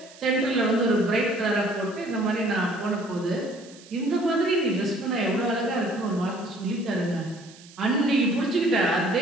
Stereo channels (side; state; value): right; noise; hiss, 22 dB below the sound